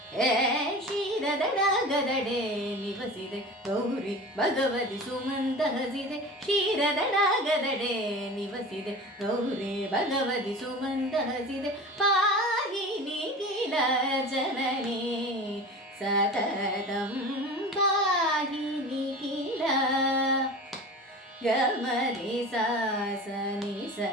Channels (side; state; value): both; normal; correlation 0.34